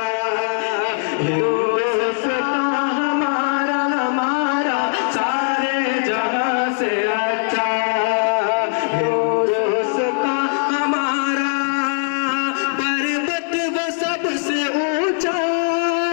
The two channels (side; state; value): right; silent; digital silence